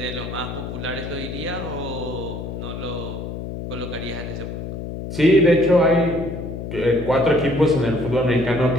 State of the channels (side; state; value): left; noise; hum, 7 dB below the sound